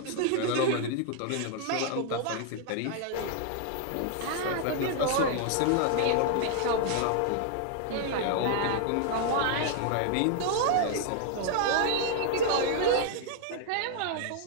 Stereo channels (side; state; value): both; different; correlation 0.00